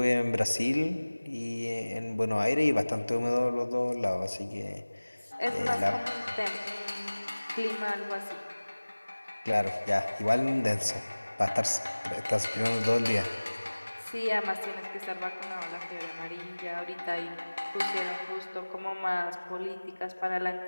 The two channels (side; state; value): both; inverted; correlation -1.00